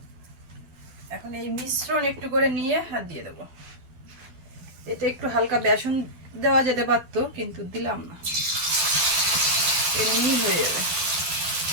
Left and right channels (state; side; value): late; left; 12 ms